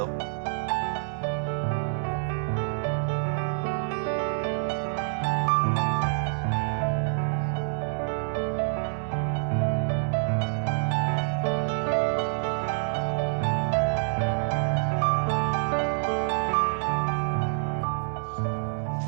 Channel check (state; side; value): silent; left; digital silence